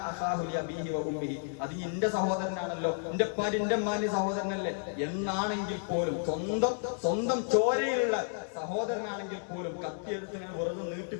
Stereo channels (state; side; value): silent; right; 57 dB below the other